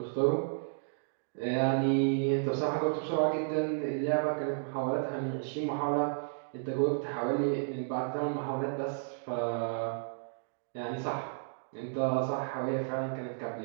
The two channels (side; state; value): left; silent; digital silence